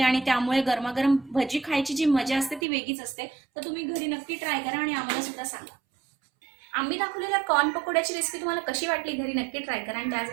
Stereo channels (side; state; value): left; drops out; at 2.7 s